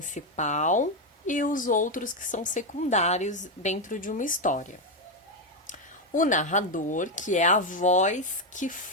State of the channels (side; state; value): both; normal; correlation 0.06